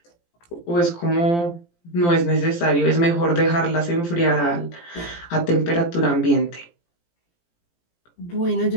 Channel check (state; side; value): late; right; 17 ms